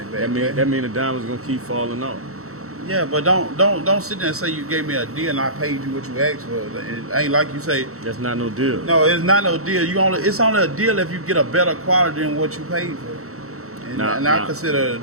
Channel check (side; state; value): left; late; 0.64 ms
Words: back. That mean the diamond's gonna keep falling off. Yeah, but don't sit there and say you gave me a deal and I paid you what you asked for. It ain't like you say. That's not no deal. No, it's not no deal. It's only a deal if you get a better quality than what you paid for. And I consider it a